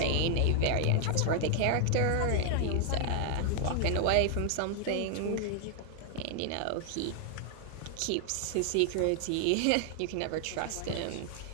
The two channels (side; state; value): both; different; correlation 0.00